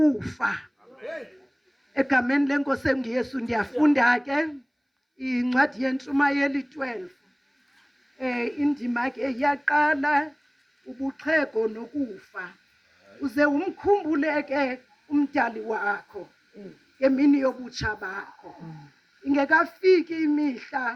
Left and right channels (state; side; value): identical; both; correlation 1.00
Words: Egameni lenkosi enguYesu ndiyafunda ke incwadi yentshumayeli 12 indima ke iyaqala ubuxhego nokufa. Uze umkhumbule ke umdali wakho ngemini yobutsha bakho. Ingekafiki